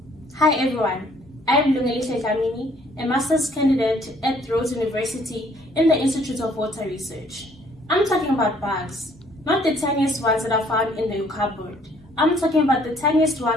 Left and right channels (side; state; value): both; normal; correlation 0.62